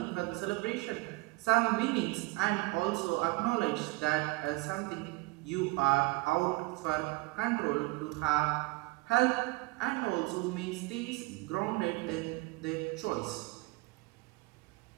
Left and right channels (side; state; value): left; quieter; 24.1 dB